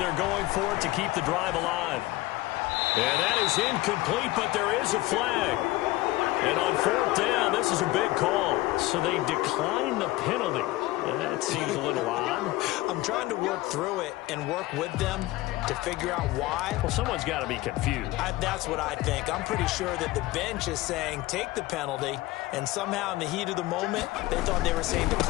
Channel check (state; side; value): quieter; right; 18.6 dB